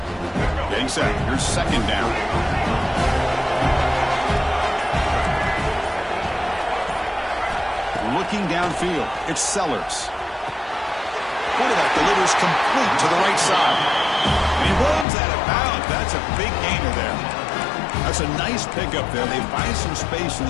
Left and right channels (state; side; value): drops out; right; at 15.1 s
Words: Set. Here's 2nd down. Looking downfield. It's Sellers. Quarterback delivers complete to the right side. And he runs out of bounds. That's a big gainer there. That's a nice pickup there. They find some space in